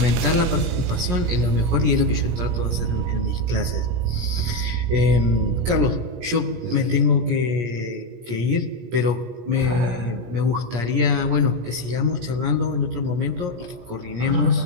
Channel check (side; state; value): left; late; 17 ms